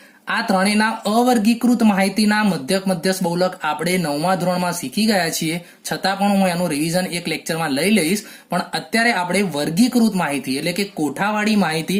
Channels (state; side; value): identical; both; correlation 1.00